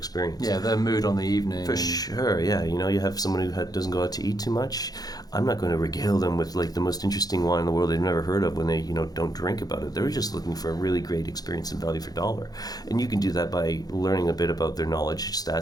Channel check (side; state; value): right; late; 0.19 ms